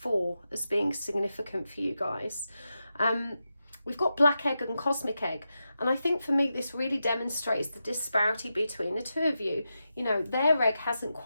as being significant for you guys. We've got Black Egg and Cosmic Egg. And I think for me, this really demonstrates the disparity between the two of you. You know, their egg hasn't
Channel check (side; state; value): both; inverted; correlation -0.89